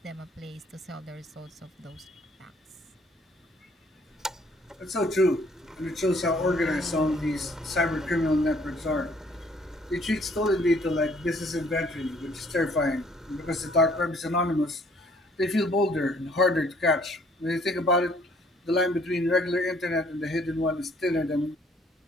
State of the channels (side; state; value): both; normal; correlation 0.61